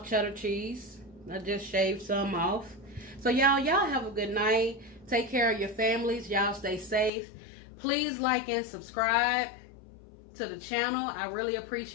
cheddar cheese. I just shaved some off. So y'all have a good night. Take care of your families. Y'all stay safe. Please like and subscribe to the channel. I really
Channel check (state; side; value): drops out; right; at 7.1 s